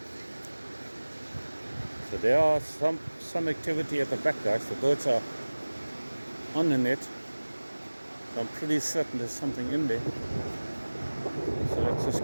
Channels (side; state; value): both; inverted; correlation -1.00